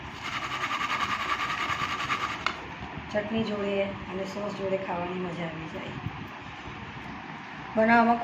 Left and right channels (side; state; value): both; identical; correlation 1.00